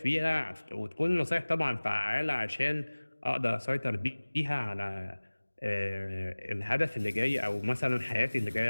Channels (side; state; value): both; inverted; correlation -1.00